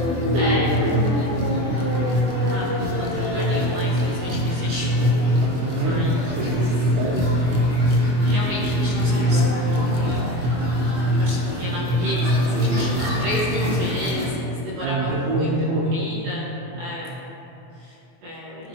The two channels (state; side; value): late; left; 24 ms